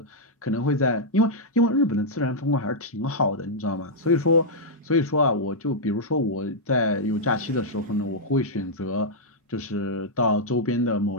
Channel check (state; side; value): normal; both; correlation -0.07